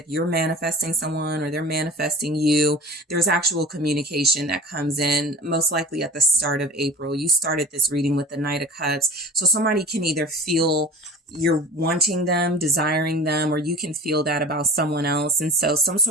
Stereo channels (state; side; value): normal; both; correlation 0.37